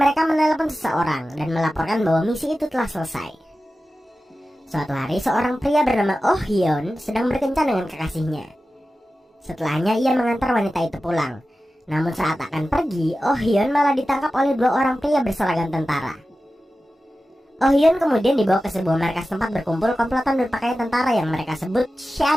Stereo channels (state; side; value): normal; both; correlation 0.94